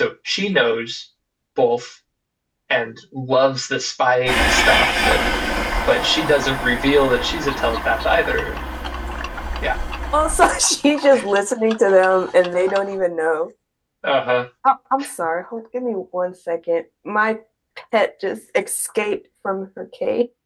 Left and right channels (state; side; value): identical; both; correlation 1.00